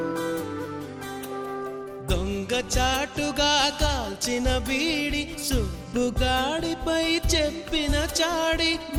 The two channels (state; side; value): identical; both; correlation 1.00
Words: దొంగ చాటుగా కాల్చిన బీడి, సుబ్బుగాడిపై చెప్పిన చాడి,